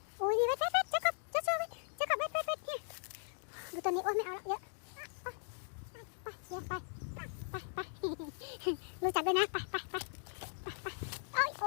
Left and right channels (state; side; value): silent; right; digital silence